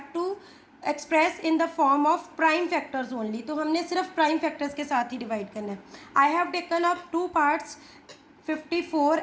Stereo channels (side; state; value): both; identical; correlation 1.00